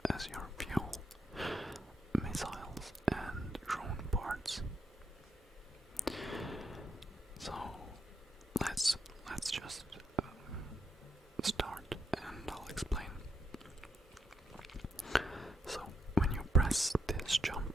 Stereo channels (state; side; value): normal; both; correlation 0.78